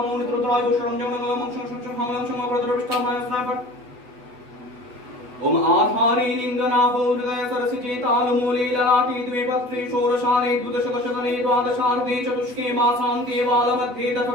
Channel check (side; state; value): left; late; 8.1 ms